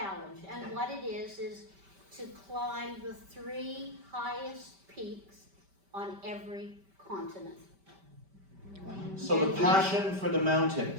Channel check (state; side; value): late; left; 5.1 ms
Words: And what it is to climb the 3 highest peaks on every continent. So the passion for the